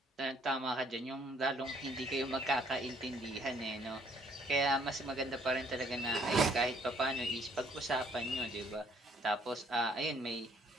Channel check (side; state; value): both; normal; correlation 0.64